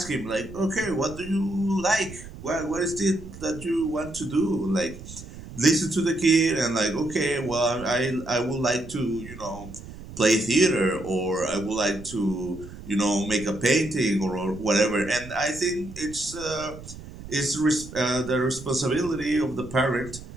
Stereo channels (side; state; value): right; noise; rumble, 14 dB below the sound